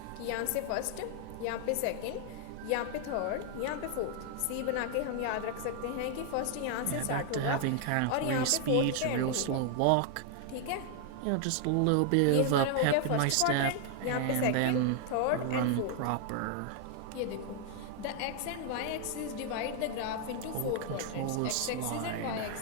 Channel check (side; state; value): both; different; correlation 0.00